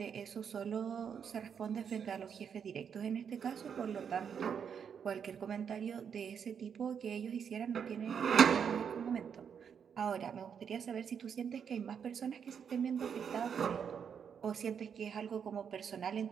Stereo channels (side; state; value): left; quieter; 7.3 dB